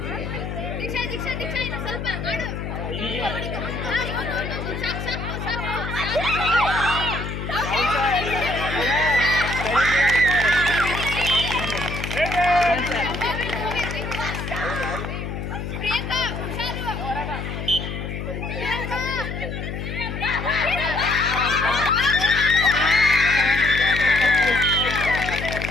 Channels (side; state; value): left; noise; hum, 5 dB below the sound